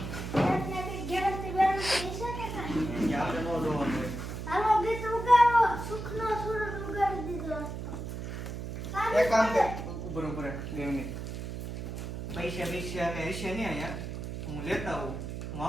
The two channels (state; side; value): noise; right; hum, 6 dB below the sound